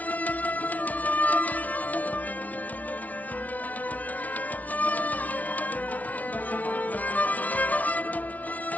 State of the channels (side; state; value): right; late; 0.072 ms